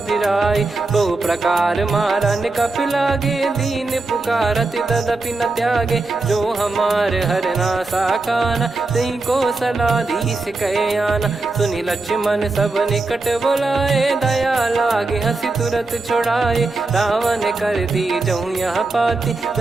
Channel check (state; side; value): quieter; left; 3.4 dB